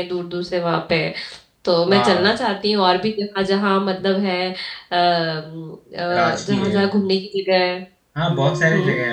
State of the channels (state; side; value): identical; both; correlation 1.00